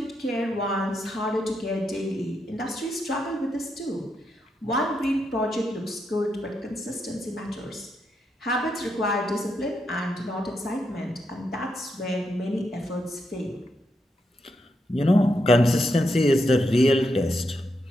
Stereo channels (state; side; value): normal; both; correlation 0.82